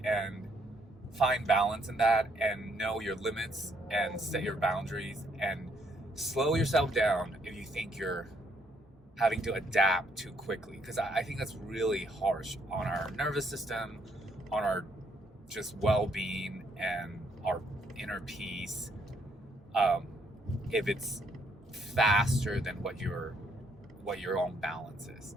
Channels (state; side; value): normal; both; correlation 0.71